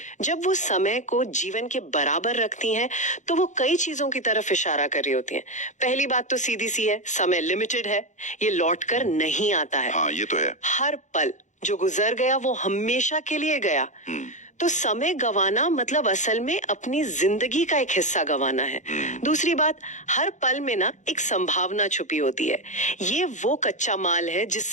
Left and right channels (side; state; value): right; late; 0.35 ms